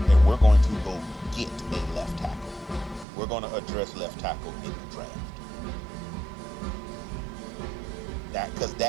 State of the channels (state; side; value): drops out; left; at 3.1 s